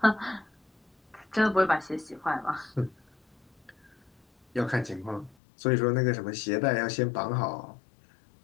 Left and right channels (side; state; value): right; drops out; at 5.4 s